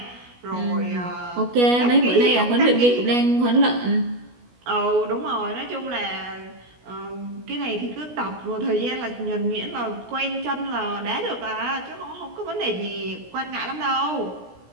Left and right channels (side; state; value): left; late; 16 ms